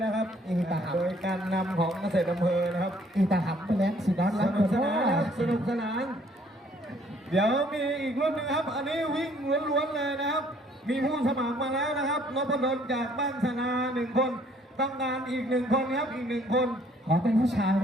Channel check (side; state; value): both; normal; correlation 0.61